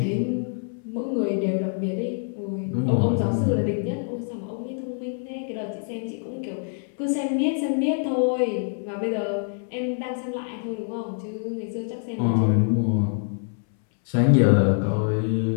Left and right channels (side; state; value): right; silent; 61 dB below the other